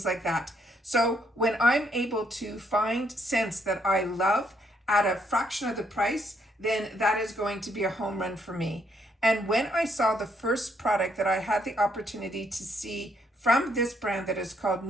like that. So when I'm able to find scents that I love at a fraction of the price, then that is going to be a home run for me. And when I saw the first product that I had the opportunity to see from this brand that is called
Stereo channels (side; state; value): both; normal; correlation 0.72